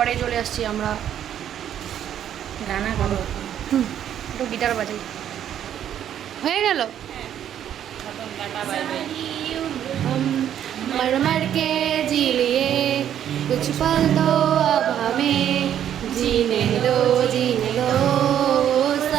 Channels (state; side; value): quieter; left; 10.2 dB